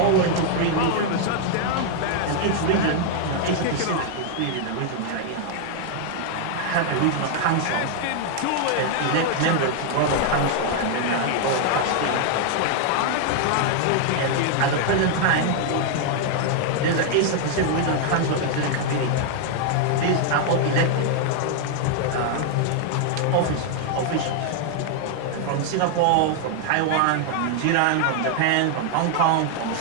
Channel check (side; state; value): both; different; correlation 0.00